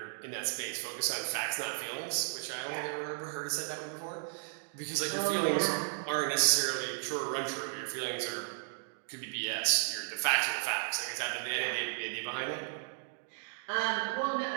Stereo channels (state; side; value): silent; left; digital silence